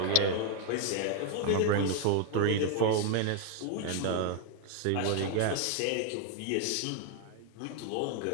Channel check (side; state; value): both; different; correlation 0.00